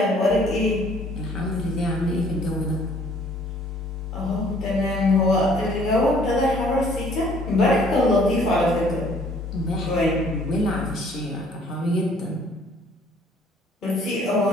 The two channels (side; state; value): both; normal; correlation 0.58